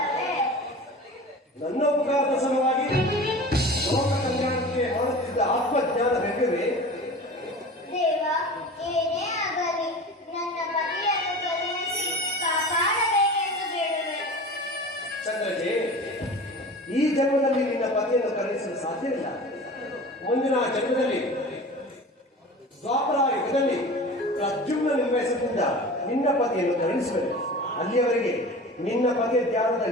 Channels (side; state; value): both; normal; correlation 0.36